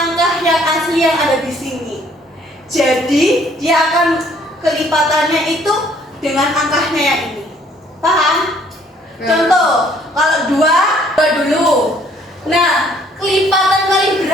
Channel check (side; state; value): both; normal; correlation 0.61